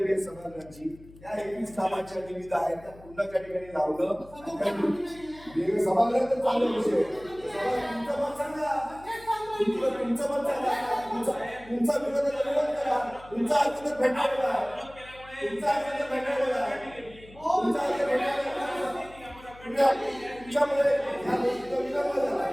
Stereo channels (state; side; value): noise; left; hum, 21 dB below the sound